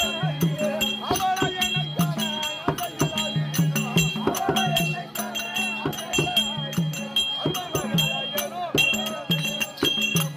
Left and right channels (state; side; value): identical; both; correlation 1.00